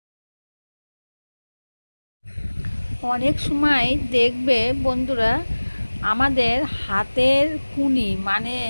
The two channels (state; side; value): inverted; both; correlation -1.00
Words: অনেক সময় দেখবে বন্ধুরা, আমাদের হাতের কুনি মানে